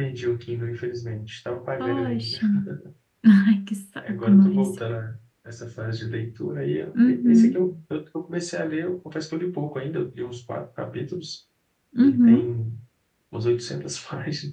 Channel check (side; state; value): both; identical; correlation 1.00